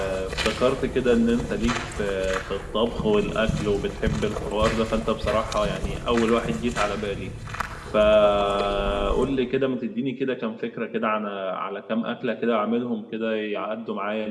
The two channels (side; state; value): both; identical; correlation 1.00